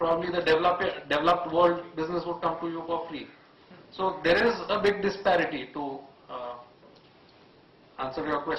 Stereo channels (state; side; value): identical; both; correlation 1.00